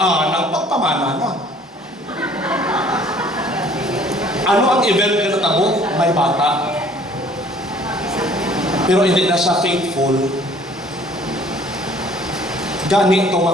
nagpagpamana na. Ano ang event na natabo? May bata. Pero hindi na siya faithful. Gani ito nga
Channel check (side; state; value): both; normal; correlation 0.55